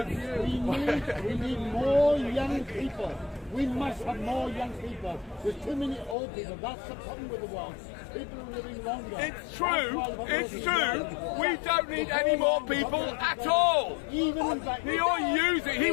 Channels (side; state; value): right; drops out; at 6.2 s